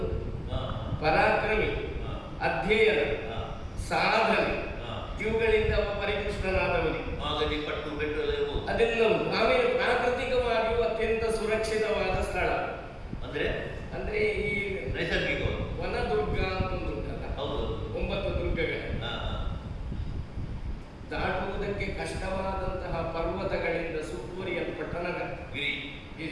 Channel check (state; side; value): identical; both; correlation 1.00